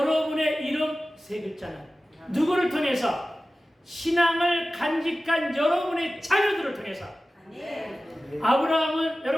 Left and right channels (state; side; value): normal; both; correlation 0.96